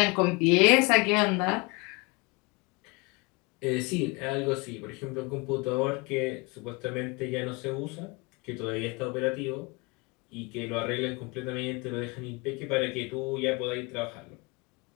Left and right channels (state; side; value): quieter; right; 27.7 dB